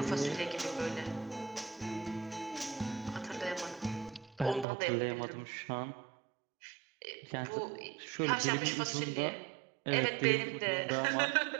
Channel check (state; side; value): drops out; left; at 4.7 s